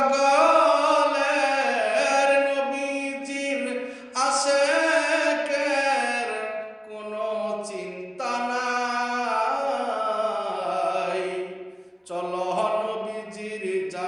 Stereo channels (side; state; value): both; identical; correlation 1.00